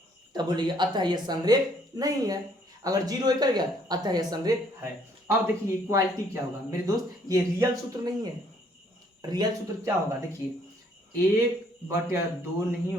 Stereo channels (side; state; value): both; normal; correlation 0.64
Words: तब बोलिए अतः यह संरेख नहीं है। अगर 0 कर गया अतः यह संरेख है। अब देखिए इक्वालिटी क्या होगा मेरे दोस्त, ये रियल सूत्र नहीं है। रियल सूत्र क्या होगा देखिए 1/2 नहीं